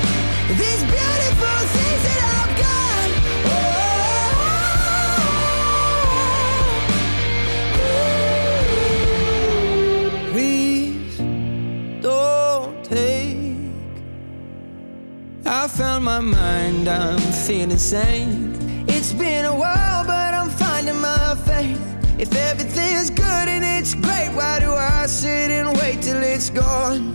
these beautiful things that I've got. Please don't take. I found my mind, I'm feeling sane. It's been a while, but I'm finding my faith. If everything's good and it's great, why do I sit and wait till it's gone?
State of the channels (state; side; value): inverted; both; correlation -1.00